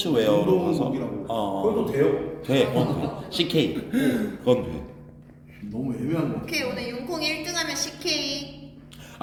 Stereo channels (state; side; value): identical; both; correlation 1.00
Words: 가서 운동복이라고. 그것도 돼요. 돼. 그건 돼. CK. 그건 돼. 너무 애매한 거. 오케이 오늘 윤콩 1등하면 CK.